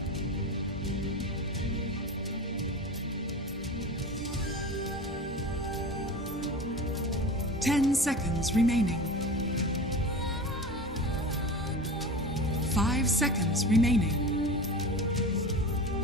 Ten seconds remaining. 5 seconds remaining.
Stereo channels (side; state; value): both; normal; correlation 0.32